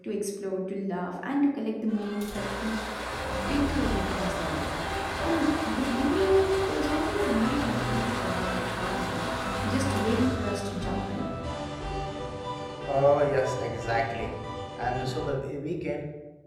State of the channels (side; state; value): both; identical; correlation 1.00